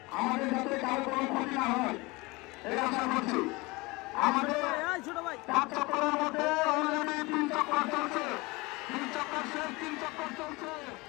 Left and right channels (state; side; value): quieter; right; 23.9 dB